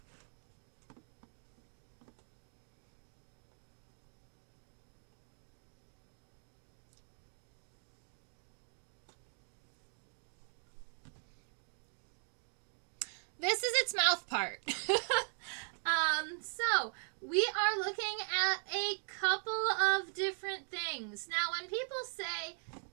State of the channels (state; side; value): silent; left; 51 dB below the other